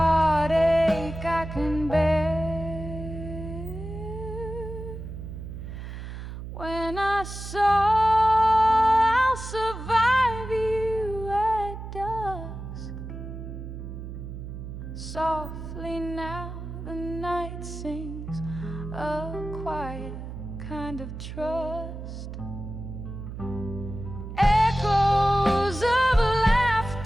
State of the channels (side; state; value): right; noise; hum, 9 dB below the sound